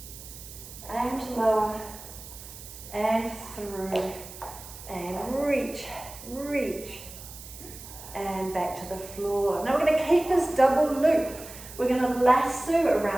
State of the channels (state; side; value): noise; right; hiss, 15 dB below the sound